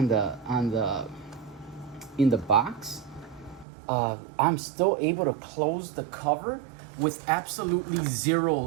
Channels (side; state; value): left; drops out; at 3.7 s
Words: the box, I'm still able to close the cover with absolutely